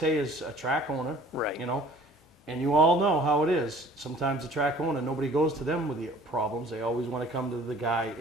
as a track owner. Right. You know, and you all know how it is. Sometimes the track owner, nobody goes to them with the problems. They always want to come to the guy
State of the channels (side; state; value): both; normal; correlation 0.51